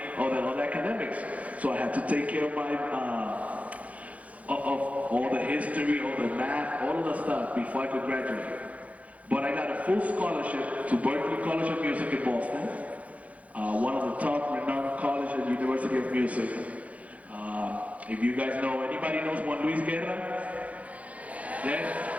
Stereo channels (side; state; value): left; late; 0.067 ms